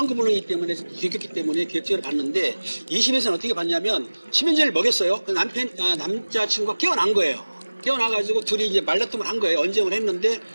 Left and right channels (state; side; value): inverted; both; correlation -1.00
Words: 때문에 들켰기 때문에 계획적으로 봤는데 2심에서는 어떻게 봤냐면 수면제를 먹였어요. 그 남자친구가 깨어난 거예요. 깨어나가지고 둘이 이제 말다툼을 한 거예요. 언쟁을 했는데